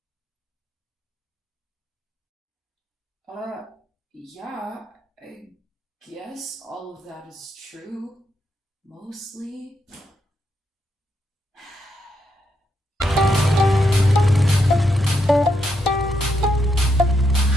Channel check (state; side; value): normal; both; correlation 0.80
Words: Yeah, I guess all of that is true. Mostly.